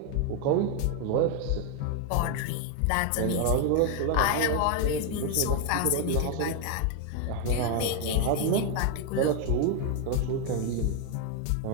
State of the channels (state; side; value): different; both; correlation 0.00